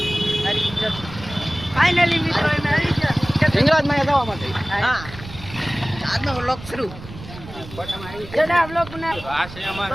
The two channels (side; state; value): right; noise; rumble, 14 dB below the sound